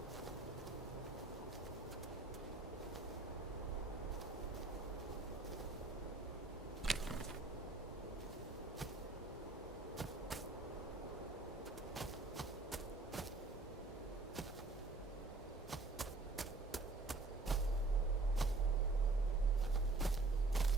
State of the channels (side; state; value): left; quieter; 3.4 dB